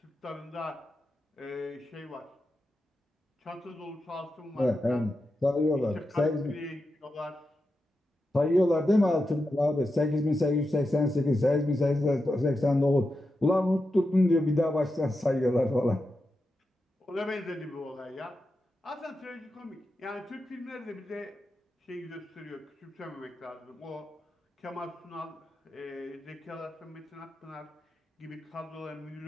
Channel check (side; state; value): both; normal; correlation 0.89